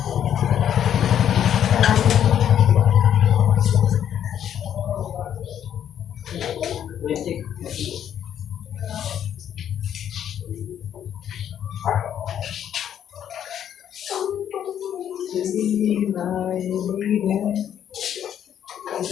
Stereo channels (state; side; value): quieter; right; 9.7 dB